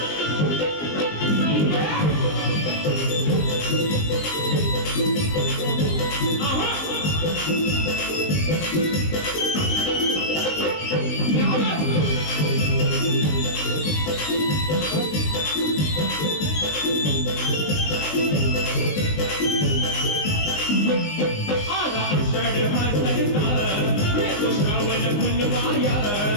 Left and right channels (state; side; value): late; right; 19 ms